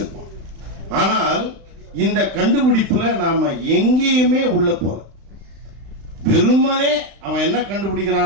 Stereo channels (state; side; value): late; left; 36 ms